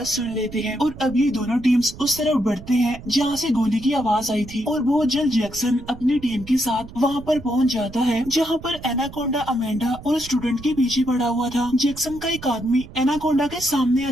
सुन लेते हैं। और अब ये दोनों टीम्स उस तरफ बढ़ते हैं जहाँ से गोली की आवाज आई थी, और बहुत जल्द जैक्सन अपनी टीम के साथ वहाँ पर पहुँच जाता है जहाँ पर एनाकोंडा अमेंडा और स्टूडेंट के पीछे पड़ा हुआ था। जैक्सन का एक आदमी एनाकोंडा के सामने आ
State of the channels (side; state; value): right; noise; rumble, 15 dB below the sound